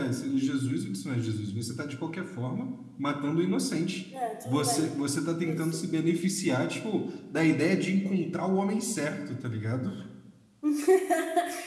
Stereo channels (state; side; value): identical; both; correlation 1.00